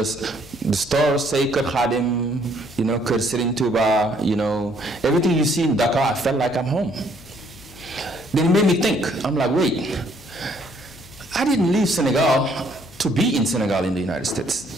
stores say Kër Khadim, you know, Kër Serigne Touba, you know, everything you see in Dakar, I felt like I'm home. Then it made me think, I'm like, wait, I didn't leave Senegal to be in Senegal in the United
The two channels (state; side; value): noise; left; hum, 22 dB below the sound